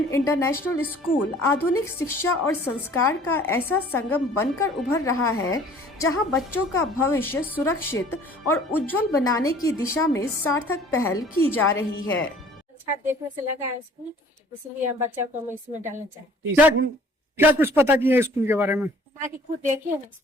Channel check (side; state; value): both; normal; correlation 0.52